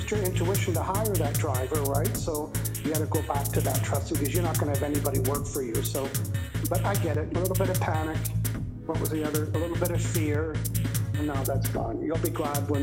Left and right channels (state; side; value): identical; both; correlation 1.00